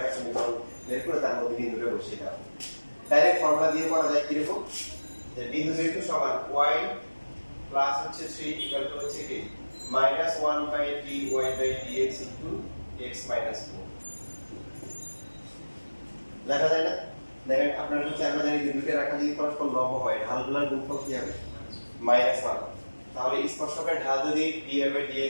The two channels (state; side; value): inverted; both; correlation -1.00